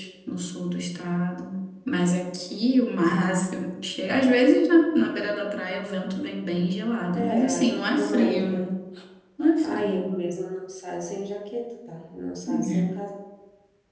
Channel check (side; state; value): both; identical; correlation 1.00